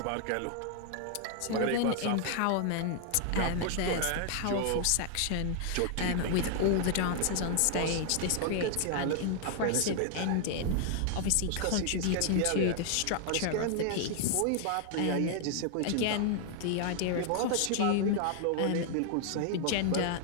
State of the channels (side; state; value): both; different; correlation 0.00